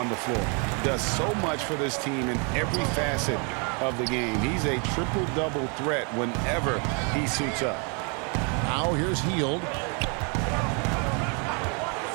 the floor. Does so much for this team in every facet of the game. He's a triple-double threat whenever he suits up. Now here's Hield.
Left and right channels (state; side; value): quieter; left; 35.9 dB